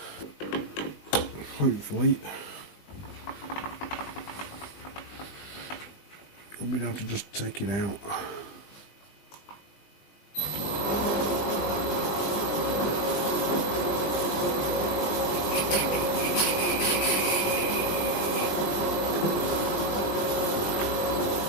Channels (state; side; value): late; right; 20 ms